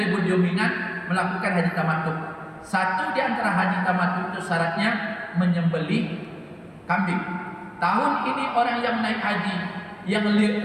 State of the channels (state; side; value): identical; both; correlation 1.00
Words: dominan melakukan haji tamattu. Satu di antara haji tamattu itu syaratnya menyembelih kambing. Tahun ini orang yang naik haji yang